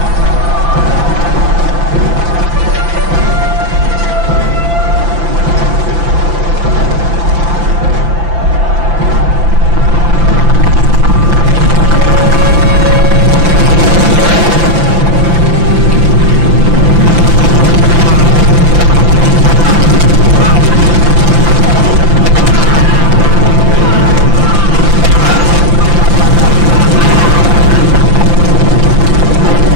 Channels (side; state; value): left; late; 5.9 ms